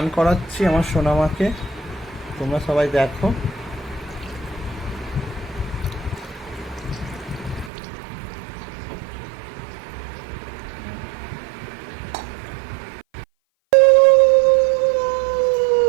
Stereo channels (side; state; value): left; drops out; at 7.7 s